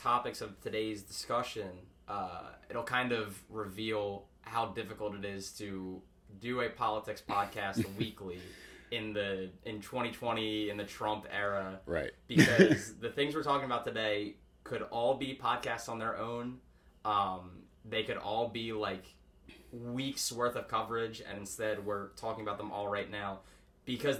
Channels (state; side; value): identical; both; correlation 1.00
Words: of today's discussion, it'll kind of reveal how difficult it is to do a politics podcast weekly in 2020 in the Trump era. Right. Because the things we're talking about today could all be podcasts on their own. They could all be like weeks worth of coverage, and instead we're talking about them all right now because